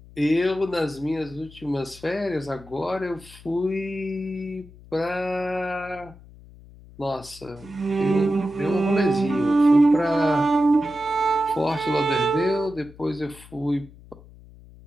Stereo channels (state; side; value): noise; left; hum, 21 dB below the sound